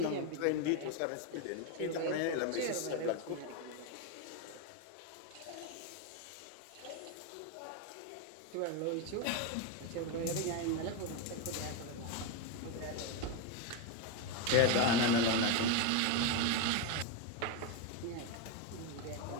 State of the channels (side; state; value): both; different; correlation 0.03